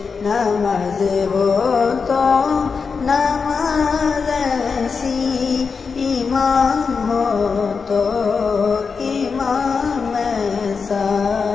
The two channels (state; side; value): quieter; right; 5.3 dB